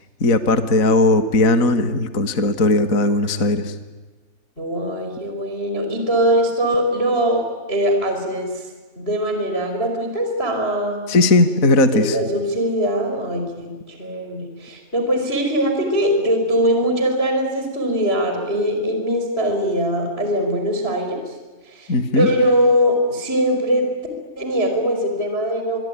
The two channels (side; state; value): right; late; 3.9 ms